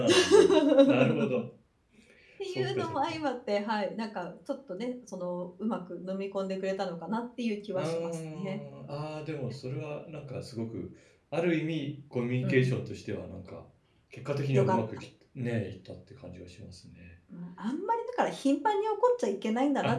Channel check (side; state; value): both; identical; correlation 1.00